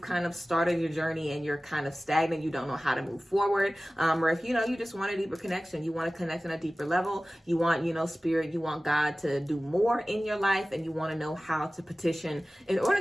of started your journey and you're kind of stagnant, you don't know how to move forward, or if you just want a deeper connection, you want to connect on a deeper level, you want, spirit, you want God to do more in your life, and you want to know how to petition in order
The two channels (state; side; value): normal; both; correlation 0.97